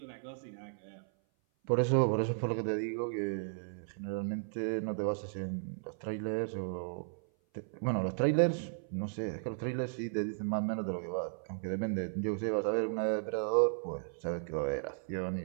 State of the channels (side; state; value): left; silent; 54 dB below the other